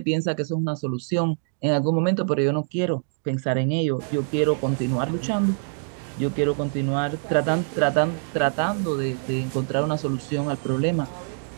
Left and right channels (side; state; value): left; silent; 62 dB below the other